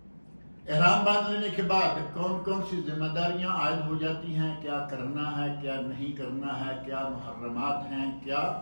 احرام باندھ لینے کے بعد کون کون سی ذمہ داریاں عائد ہو جاتی ہیں، کیا کرنا ہے کیا نہیں کرنا ہے، کیا محرمات ہیں کیا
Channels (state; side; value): inverted; both; correlation -1.00